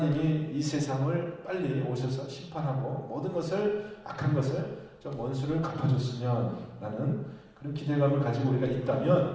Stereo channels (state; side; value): identical; both; correlation 1.00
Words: 이 세상을 빨리 오셔서 심판하고 모든 것을 악한 것을 좀 원수를 갚아줬으면 라는 그런 기대감을 가지고 우리가